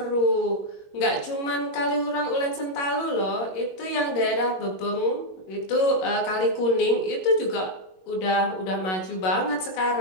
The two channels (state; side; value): late; right; 21 ms